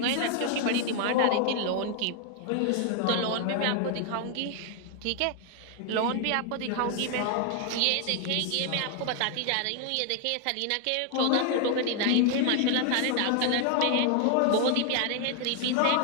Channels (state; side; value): different; both; correlation 0.00